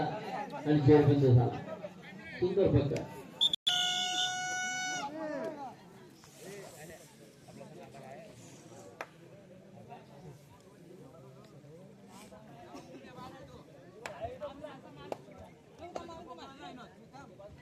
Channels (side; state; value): both; identical; correlation 1.00